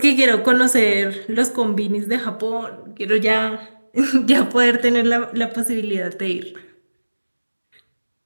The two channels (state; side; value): inverted; both; correlation -1.00